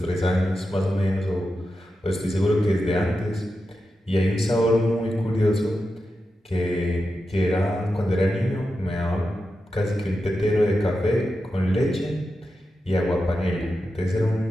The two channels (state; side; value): normal; both; correlation 0.90